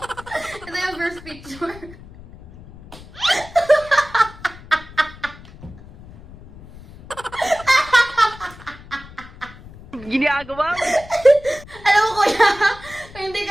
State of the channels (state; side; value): noise; left; rumble, 19 dB below the sound